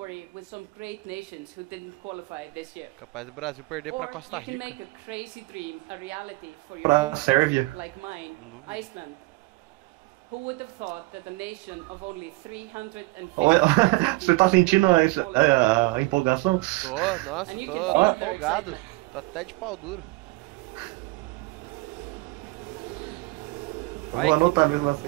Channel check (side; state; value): left; quieter; 23.2 dB